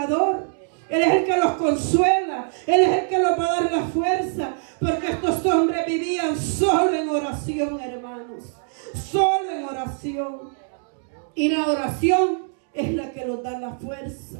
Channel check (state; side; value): silent; left; 63 dB below the other